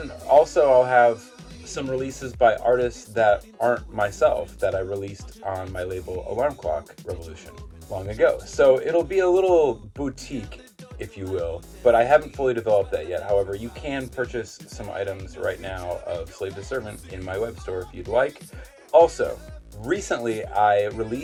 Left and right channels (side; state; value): both; identical; correlation 1.00